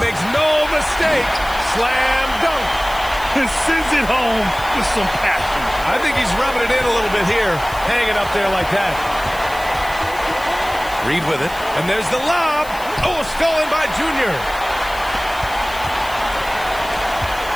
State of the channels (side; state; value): left; noise; hiss, 17 dB below the sound